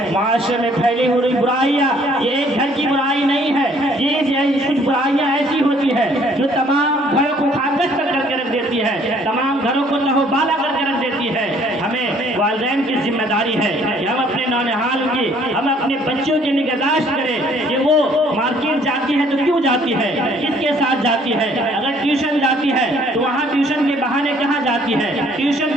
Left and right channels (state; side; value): normal; both; correlation 0.60